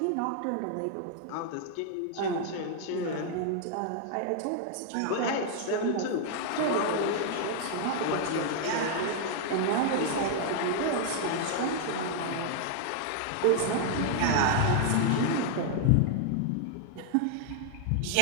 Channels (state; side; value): different; both; correlation 0.00